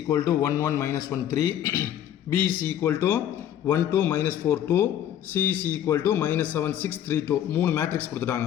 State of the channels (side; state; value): right; quieter; 10.7 dB